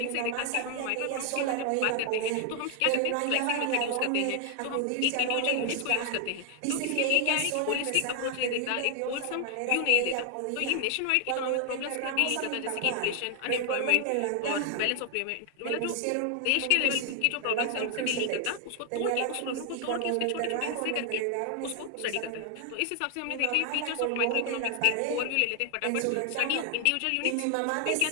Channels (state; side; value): different; both; correlation 0.00